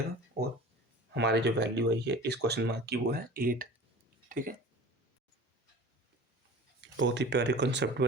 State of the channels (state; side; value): normal; both; correlation 0.39